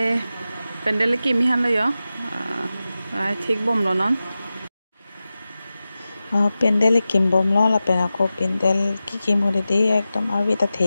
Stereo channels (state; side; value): inverted; both; correlation -0.94